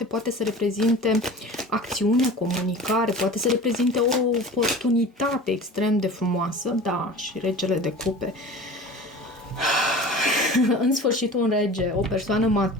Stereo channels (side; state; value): both; normal; correlation 0.38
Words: poate să reprezinte acțiune, comunicare, poate să reprezinte o oportunitate extrem de frumoasă. Da, și regele de cupe. În sfârșit un rege, o persoană